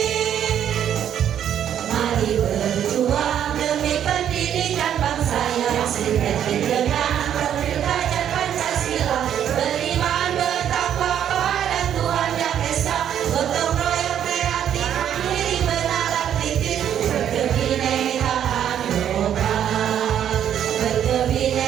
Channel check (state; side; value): quieter; left; 9.8 dB